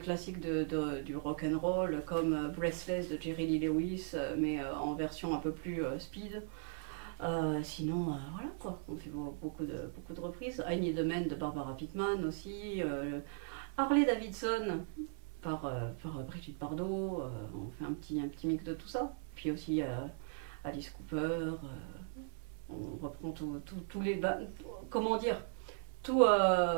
du rock and roll comme Breathless de Jerry Lee Lewis, mais en version un peu plus speed. Sinon, voilà quoi, on fait beaucoup de reprises. I Need a Man de Barbara Pittman aussi, Harley Davidson par Brigitte Bardot, on fait un petit mix de tout ça. Puis aussi Alice Cooper, on reprend tous les... comment dire,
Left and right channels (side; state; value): left; silent; 52 dB below the other